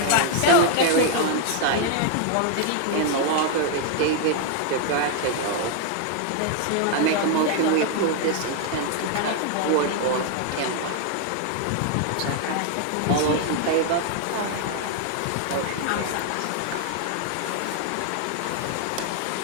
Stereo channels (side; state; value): both; different; correlation 0.00